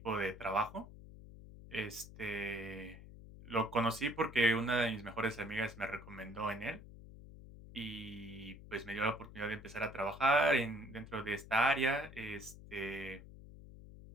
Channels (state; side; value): noise; left; hum, 16 dB below the sound